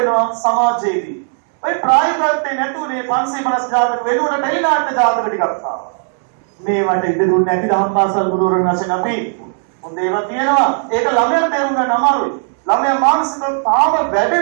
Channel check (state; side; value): silent; left; 62 dB below the other